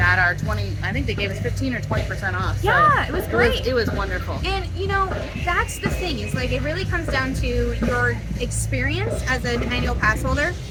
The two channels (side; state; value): both; identical; correlation 1.00